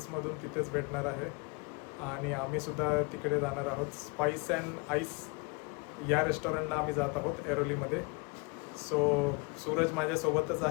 तिथेच भेटणार आहे आणि आम्हीसुद्धा तिकडे जाणार आहोत. स्पाइस अँड आईस या रेस्टॉरंटला आम्ही जात आहोत ऐरोलीमध्ये. सो सूरज माझ्यासोबतच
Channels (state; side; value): quieter; right; 30.4 dB